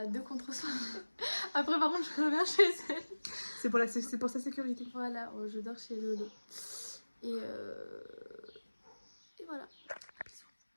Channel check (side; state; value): both; inverted; correlation -1.00